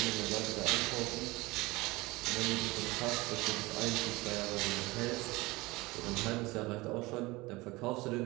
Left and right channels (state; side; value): quieter; left; 21.8 dB